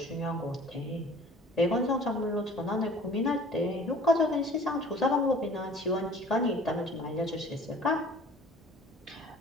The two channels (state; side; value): normal; both; correlation 0.48